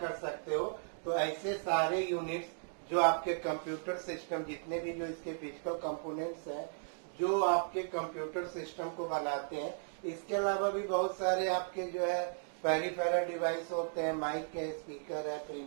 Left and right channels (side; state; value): left; silent; digital silence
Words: सकते हो। तो ऐसे सारे यूनिट्स जो आपके कंप्यूटर सिस्टम, जितने भी जो इसके फिजिकल कंपोनेंट्स हैं जो आपके कंप्यूटर सिस्टम को बनाते हैं, इसके अलावा भी बहुत सारे आपके जो है पेरिफेरल डिवाइस होते हैं, माइक है, स्पीकर है,